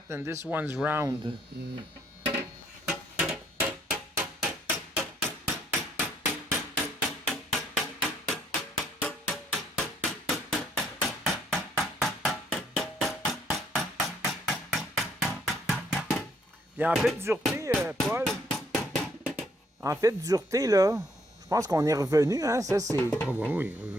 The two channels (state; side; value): normal; both; correlation 0.67